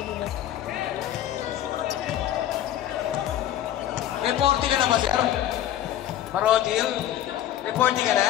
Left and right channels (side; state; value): right; quieter; 12.0 dB